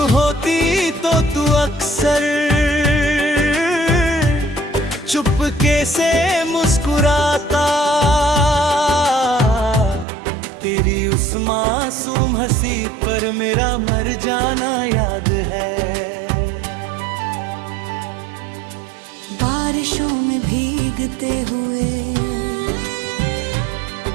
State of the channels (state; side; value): drops out; left; at 10.1 s